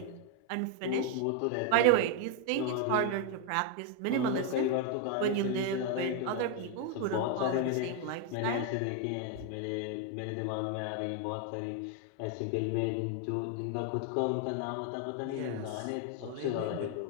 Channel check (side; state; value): both; different; correlation 0.01